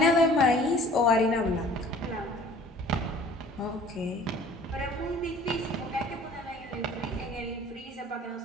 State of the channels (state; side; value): normal; both; correlation 0.50